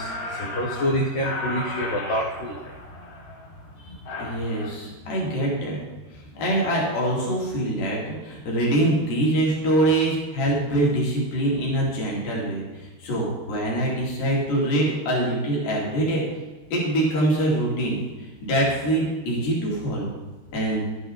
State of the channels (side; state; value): right; late; 13 ms